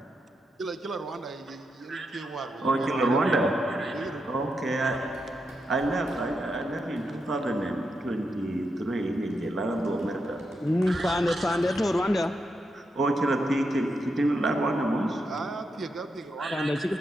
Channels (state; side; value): normal; both; correlation 0.84